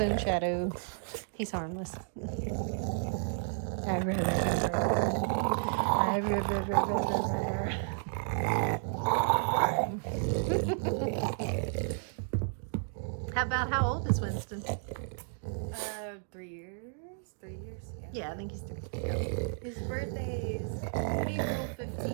own shadow. He's harmless. How old is Winston? 3 years. 3 years. Yeah. Yeah, I think he's 3. His birthday is April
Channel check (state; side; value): silent; left; digital silence